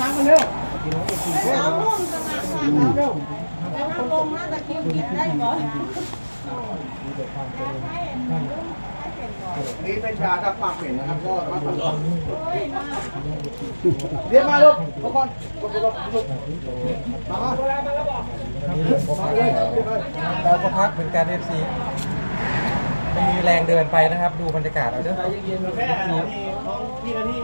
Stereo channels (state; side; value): inverted; both; correlation -1.00